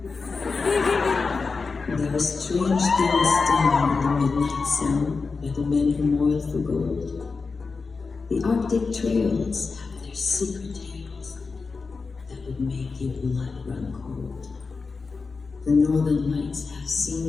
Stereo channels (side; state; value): right; quieter; 4.5 dB